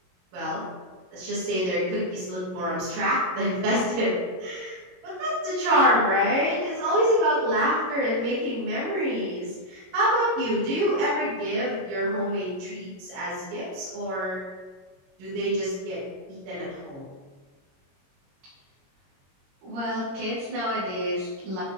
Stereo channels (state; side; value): late; left; 22 ms